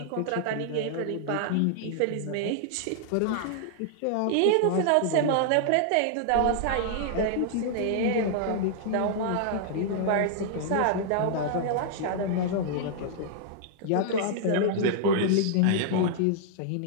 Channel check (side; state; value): both; different; correlation -0.01